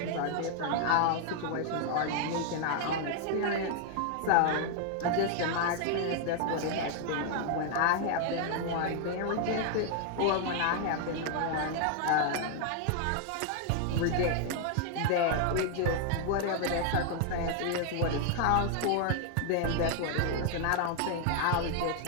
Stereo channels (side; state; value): both; different; correlation 0.00